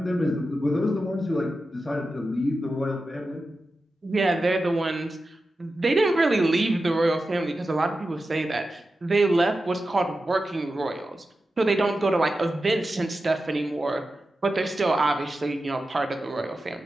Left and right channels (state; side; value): normal; both; correlation 0.92